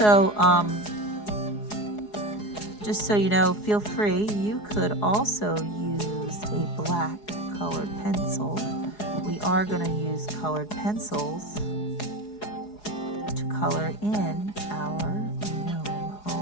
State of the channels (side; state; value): right; late; 4.8 ms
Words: just so you know, feel free, you could also use a black colored pencil. We are going to use colored pencils to color in our gnome